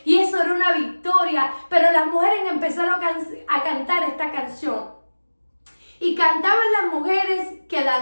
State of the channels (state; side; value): inverted; both; correlation -1.00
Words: y eso era una victoria. Pero las mujeres empezaron a cantar esta canción y cantaban las mujeres que